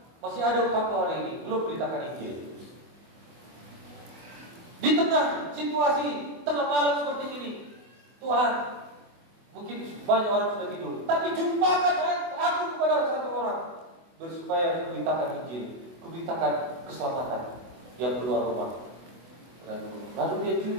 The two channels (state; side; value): late; left; 24 ms